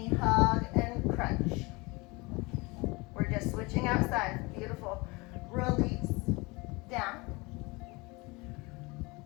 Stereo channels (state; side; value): quieter; right; 25.4 dB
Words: hug and crunch. We're just switching outside. Beautiful. Release. Down.